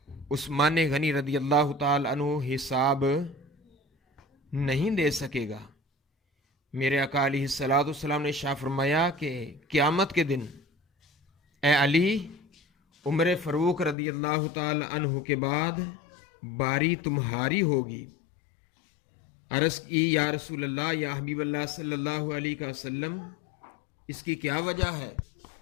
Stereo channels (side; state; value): right; drops out; at 14.0 s